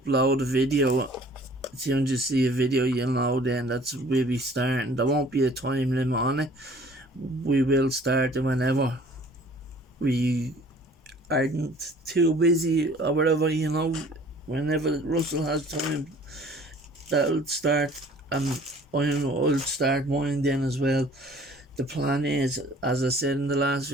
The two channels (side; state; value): both; normal; correlation 0.52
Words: a video. As soon as you see a video, you'll know then we'll be starting. There won't be a time limit on it. We will start it whenever we aren't too busy or whatever, you know. Whenever Russell has time, that'll start, and I'll start mine then as well. The plan is, as I said in the last